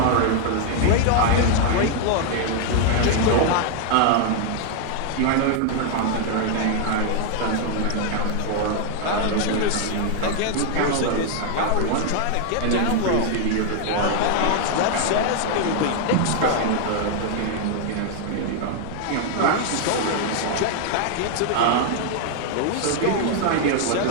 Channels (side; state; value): both; different; correlation 0.00